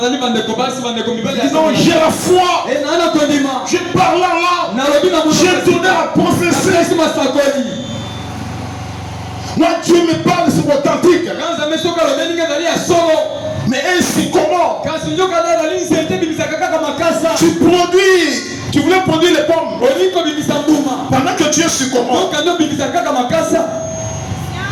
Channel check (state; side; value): identical; both; correlation 1.00